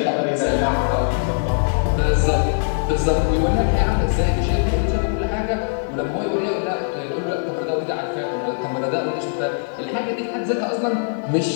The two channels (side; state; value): right; silent; digital silence